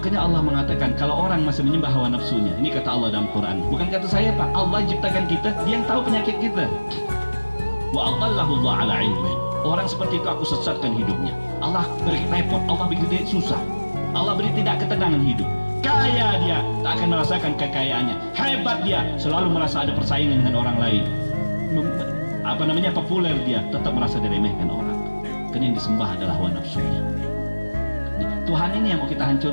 Allah mengatakan kalau orang masih menyembah hawa nafsunya, ini kata Allah dalam Quran, bukan kata saya Pak, Allah yang ciptakan kita, Dia yang tahu penyakit kita. Wa adallahu Allah ala ilmin. Orang seperti itu aku sesatkan hidupnya. Allah beri repot, Allah beri dia susah, Allah beri tidak ketenangan hidup. Kaya dia, tak akan merasakan kekayaannya. Hebat dia, selalu merasa ada persaingan dengan orang lain. Populer dia, tetap merasa diremehkan orang. Karena yang disembah adalah hawa nafsunya. Tuhan ini yang mau kita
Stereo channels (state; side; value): inverted; both; correlation -1.00